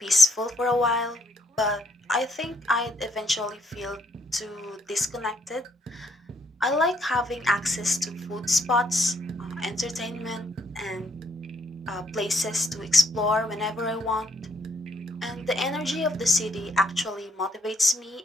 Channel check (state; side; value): normal; both; correlation 0.71